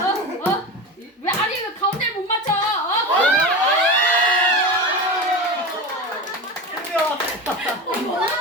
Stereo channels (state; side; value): normal; both; correlation 0.25